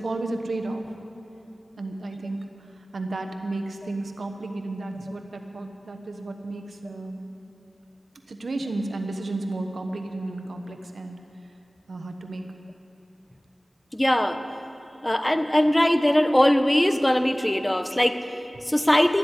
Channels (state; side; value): normal; both; correlation 0.98